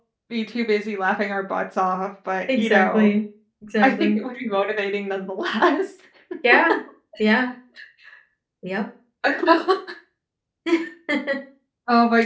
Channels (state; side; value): identical; both; correlation 1.00